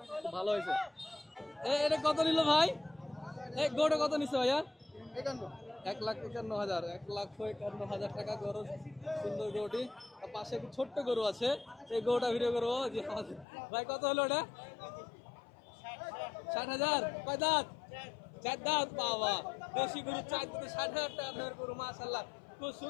খুব ভালো হয়েছে। এটা কত নিল ভাই? এই গরুটা কত নিচ্ছে ভাইয়া? 1,51,000। 1,51,000 টাকা গরু। সুন্দর গরুটি। পাশে একটি ছোট্ট গরু আছে, এই গরুটা ভিডিও করবো। জি ভাই কত হলো এটা? 60,000। কয় দাঁত? 4 দাঁত। বাবা দেশি গরু 4 দাঁতে 60,000 টাকা গরু। মাশাআল্লাহ খুব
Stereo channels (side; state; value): right; drops out; at 13.5 s